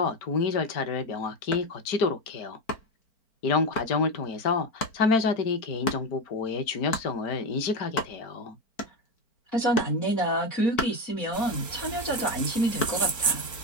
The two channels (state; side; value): late; right; 4.4 ms